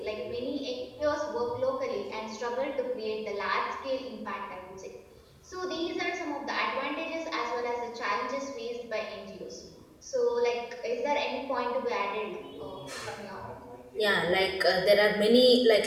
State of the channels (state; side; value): identical; both; correlation 1.00